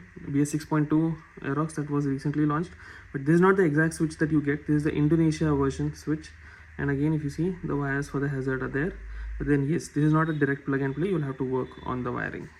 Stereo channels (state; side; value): identical; both; correlation 1.00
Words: BS 6.2 Aerox that was recently launched, but this is not the exact switch that you get. This is the Indonesia version switch, and again if you see, the wires for the hazard are there, but then yes, this is not a direct plug and play, you'll have to work on the wiring.